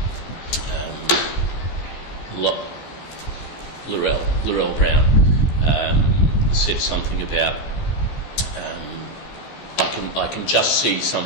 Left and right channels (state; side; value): late; right; 14 ms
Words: Laurel Brown said something about I can just see